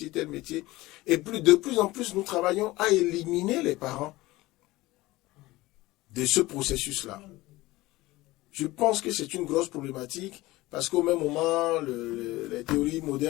Et de plus en plus, nous travaillons à éliminer les parents de ce processus-là. Je pense que c'est une grosse problématique parce qu'au même moment, les théories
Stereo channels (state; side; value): quieter; right; 19.2 dB